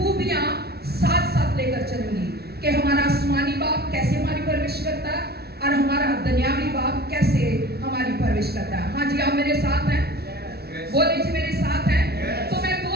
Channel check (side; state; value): left; late; 0.46 ms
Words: ساتھ ساتھ لے کر چلوں گی کہ ہمارا آسمانی باپ کیسے ہماری پرورش کرتا ہے اور ہمارا دنیاوی باپ کیسے ہماری پرورش کرتا ہے. ہاں جی, آپ میرے ساتھ ہیں؟ بولے جی میرے ساتھ ہیں. تو میں